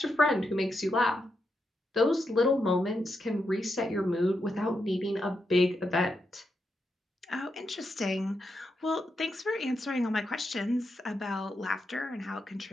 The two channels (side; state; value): both; normal; correlation 0.84